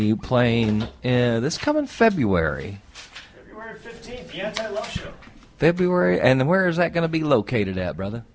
playing this coming February. February 15th, the Anti-Love Show. February, and where is that going to be located at, brother?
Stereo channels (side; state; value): both; identical; correlation 1.00